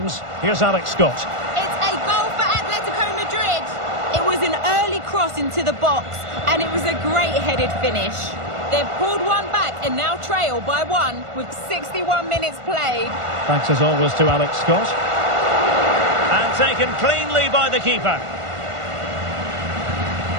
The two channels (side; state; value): left; late; 1.5 ms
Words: Here's Alex Scott. It's a goal for Atletico Madrid. It was an early cross into the box, and it was a great headed finish. They've pulled one back and now trail by 1 with 61 minutes played. Thanks as always to Alex Scott. And taken cleanly by the keeper.